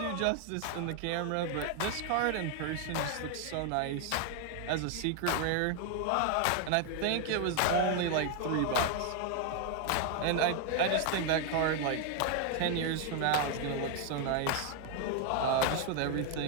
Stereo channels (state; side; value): different; both; correlation 0.00